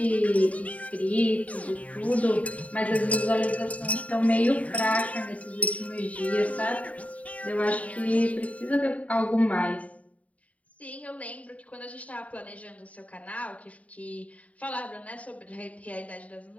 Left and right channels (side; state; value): right; late; 0.068 ms